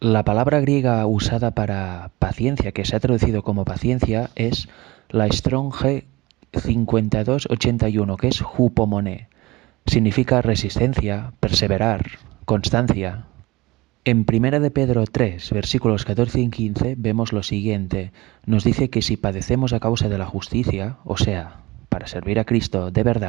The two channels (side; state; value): left; quieter; 21.1 dB